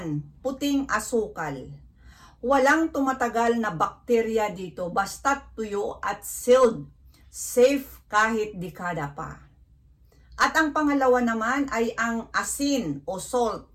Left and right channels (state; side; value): identical; both; correlation 1.00